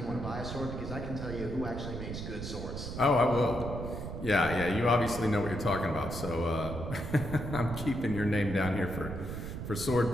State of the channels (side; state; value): right; noise; rumble, 6 dB below the sound